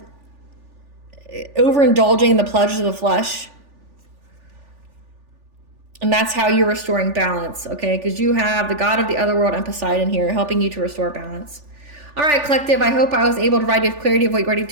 overindulging in the pleasures of the flesh. And that's how you're restoring balance, okay? Because you have the god of the other world and Poseidon here helping you to restore balance. All right, collective, I hope I was able to provide you with clarity of what you already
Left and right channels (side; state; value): left; late; 3.4 ms